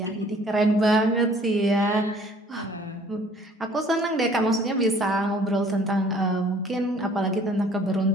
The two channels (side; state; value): both; normal; correlation 0.55